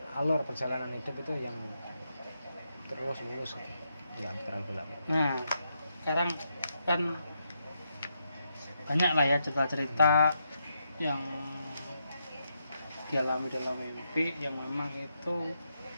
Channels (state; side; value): inverted; both; correlation -0.81